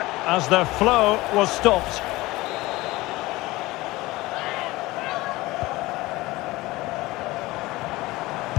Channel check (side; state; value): right; quieter; 19.8 dB